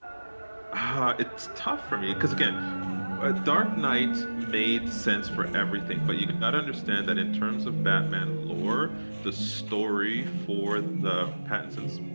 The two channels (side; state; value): both; inverted; correlation -1.00